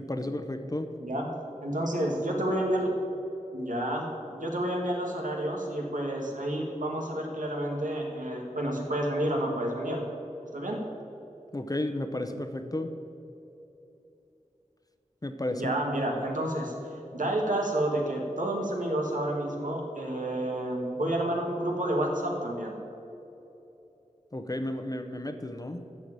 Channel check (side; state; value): both; normal; correlation 0.69